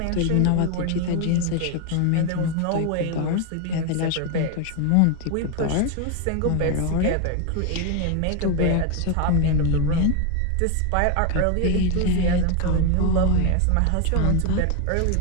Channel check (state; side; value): different; both; correlation 0.01